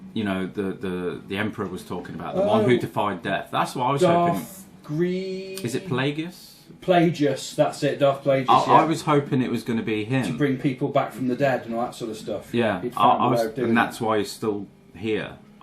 you know, the Emperor was talking about, the one who defied death. That's what I was hoping. Is it Plagueis? Plagueis, that's it, Darth Plagueis. I was hoping it was going to be him. To bring people back from the dead and all that sort of stuff. Yeah, and that's why he's still here.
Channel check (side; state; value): both; identical; correlation 1.00